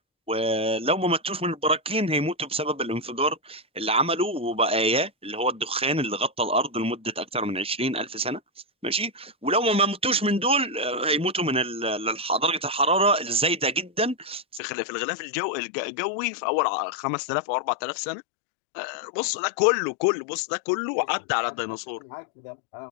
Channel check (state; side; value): drops out; right; at 14.6 s